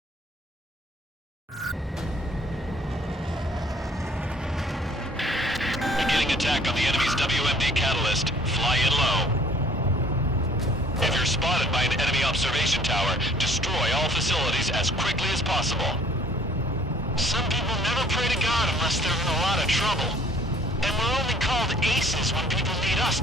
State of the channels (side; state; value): both; normal; correlation 0.55